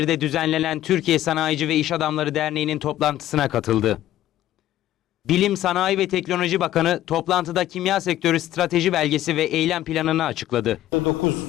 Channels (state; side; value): quieter; right; 13.5 dB